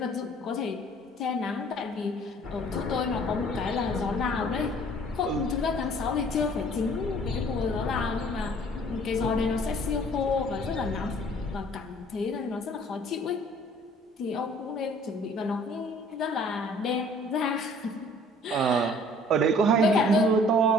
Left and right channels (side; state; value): both; normal; correlation 0.54